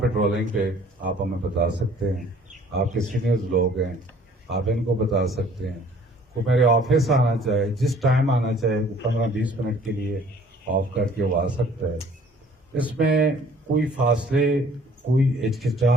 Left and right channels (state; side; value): normal; both; correlation 0.54